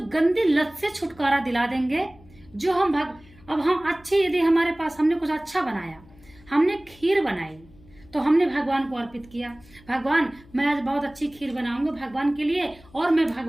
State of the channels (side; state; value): left; noise; hum, 25 dB below the sound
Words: गंदी लत से छुटकारा दिला देंगे जो अब हम अच्छे, यदि हमारे पास हमने कुछ अच्छा बनाया, हमने खीर बनाई तो हमने भगवान को अर्पित किया। भगवान मैं आज बहुत अच्छी खीर बनाऊंगा भगवान के लिए और मैं